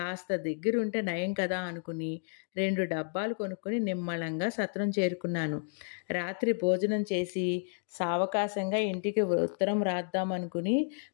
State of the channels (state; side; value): silent; right; digital silence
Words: దగ్గరుంటే నయం కదా అనుకుని 2 డబ్బాలు కొనుక్కొని నిమ్మళంగా సత్రం చేరుకున్నాను. రాత్రి భోజనం చేసి సావకాశంగా ఇంటికి ఉత్తరం రాద్దామనుకుని